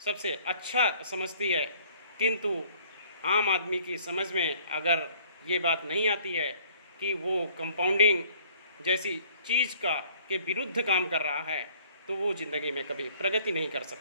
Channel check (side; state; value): both; inverted; correlation -0.56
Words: अच्छा समझती है, किंतु आम आदमी की समझ में अगर ये बात नहीं आती है कि वो कंपाउंडिंग जैसी चीज़ का के विरुद्ध काम कर रहा है, तो वो ज़िंदगी में कभी प्रगति नहीं कर